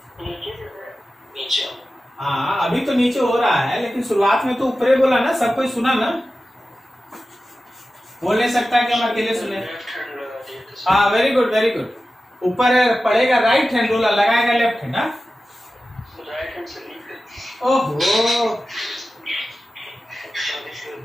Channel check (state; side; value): normal; both; correlation 0.94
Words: नीचे। हाँ अभी तो नीचे हो रहा है, लेकिन शुरुआत में तो ऊपर ही बोला ना, सब कोई सुना ना? बोल नहीं सकता कि हम अकेले सुने। हाँ वेरी गुड वेरी गुड। ऊपर पड़ेगा राइट हैंड, रोलर लगाएगा लेफ्ट हैंड। राइट हैंड से नीचे। ओहो,